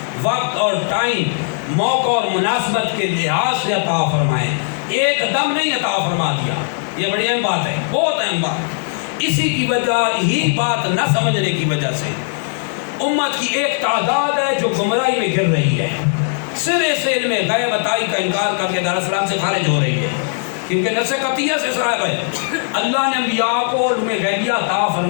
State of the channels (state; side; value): silent; right; digital silence